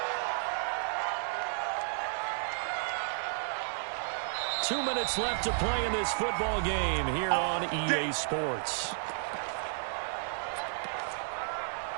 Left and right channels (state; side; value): silent; left; digital silence